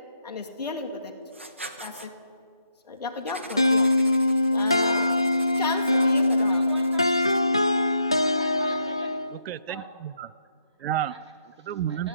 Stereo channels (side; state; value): both; inverted; correlation -0.80